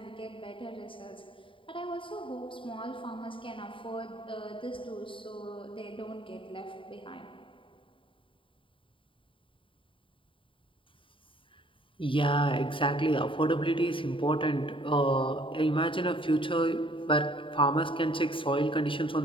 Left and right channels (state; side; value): late; right; 0.25 ms